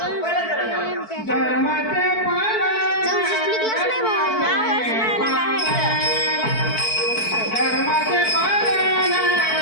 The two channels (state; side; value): late; right; 4.5 ms